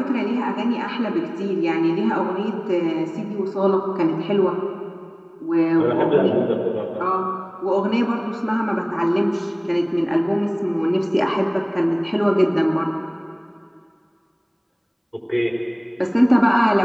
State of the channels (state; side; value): identical; both; correlation 1.00